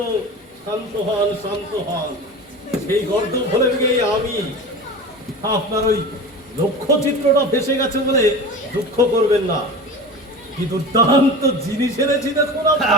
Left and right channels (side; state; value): both; normal; correlation 0.32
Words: শান্ত হন। সেই গর্দ ভুলে গিয়ে আমি আপনার ওই লক্ষ্য চিত্রটা ভেসে গেছে বলে দুঃখ করবেন না। কি দুর্দান্ত জিনিস এনেছি দেখুন।